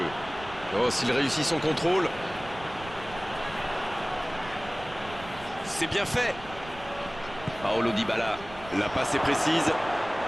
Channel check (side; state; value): right; noise; rumble, 16 dB below the sound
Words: Oh, s'il réussit son contrôle. C'est bien fait. Paolo Dybala. La passe est précise.